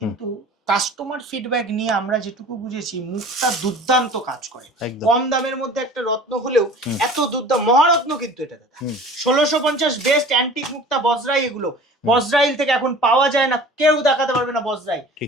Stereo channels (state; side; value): normal; both; correlation 0.43